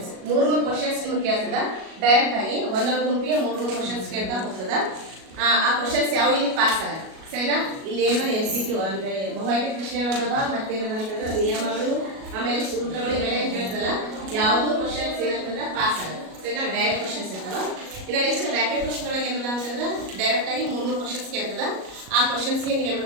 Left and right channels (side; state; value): left; late; 37 ms